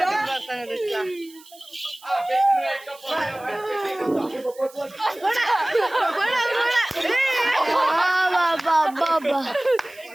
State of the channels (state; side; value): noise; right; hiss, 23 dB below the sound